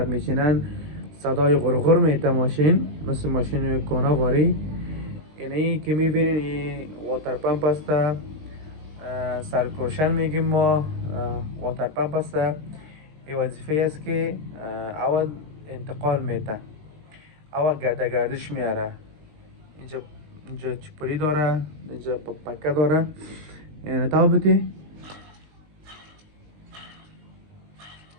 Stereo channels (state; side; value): late; left; 19 ms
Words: میشینن صدای غرغر میته ماشین، مثل ماشین کونا غاری. یعنی که میبینین این واتر پمپ است، سرکرشن میگیم ما. واتر پمپ است، این وظیفه است که اول انتقال میته، اول گردش میاره. اینجا چپلی داره، اینجا پکه داره. یعنی تابتی